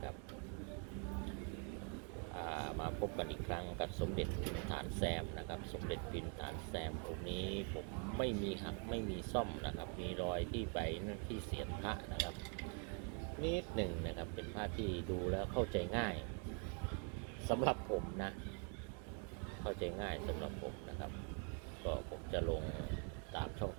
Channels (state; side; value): quieter; left; 39.8 dB